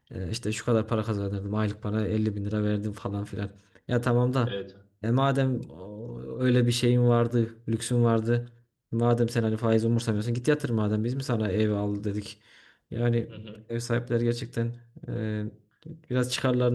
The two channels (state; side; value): identical; both; correlation 1.00